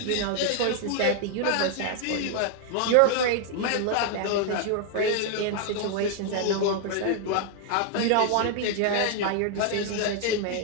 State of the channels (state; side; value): different; both; correlation 0.00